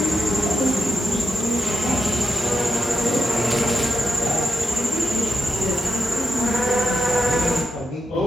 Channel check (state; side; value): normal; both; correlation 0.84